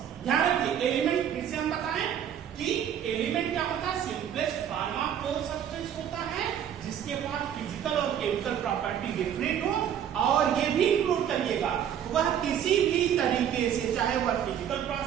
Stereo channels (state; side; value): quieter; left; 9.4 dB